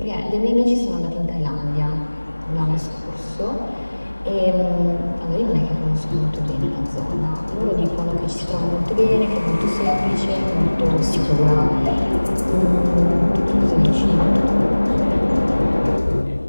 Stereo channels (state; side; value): inverted; both; correlation -1.00